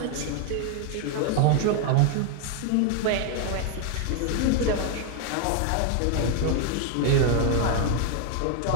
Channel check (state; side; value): different; both; correlation 0.00